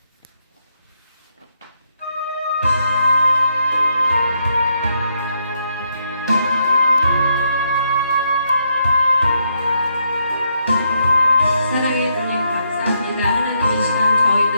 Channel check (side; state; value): both; inverted; correlation -0.78